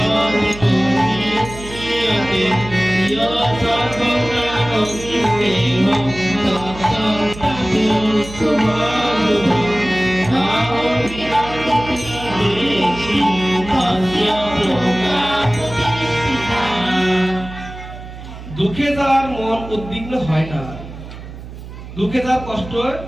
দুঃখে যার মন উদ্বিগ্ন হয় না, দুঃখে যার কষ্ট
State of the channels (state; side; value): noise; right; hum, 13 dB below the sound